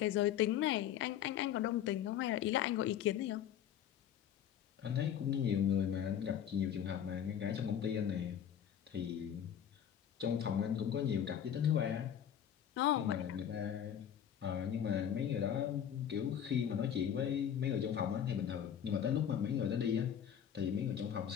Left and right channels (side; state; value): right; quieter; 9.4 dB